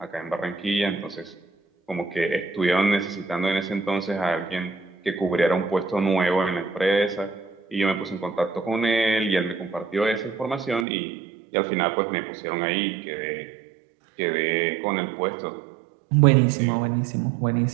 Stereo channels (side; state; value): left; drops out; at 10.9 s